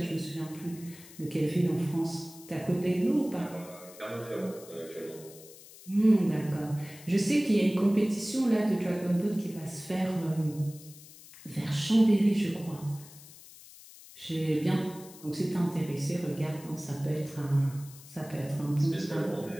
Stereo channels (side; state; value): left; noise; hiss, 19 dB below the sound